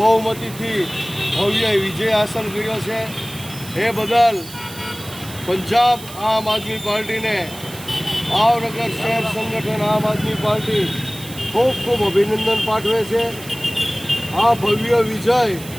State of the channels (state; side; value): noise; right; hiss, 15 dB below the sound